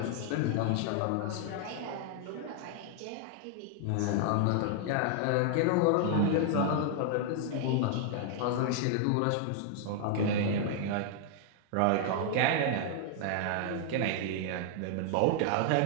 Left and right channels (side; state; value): both; different; correlation 0.00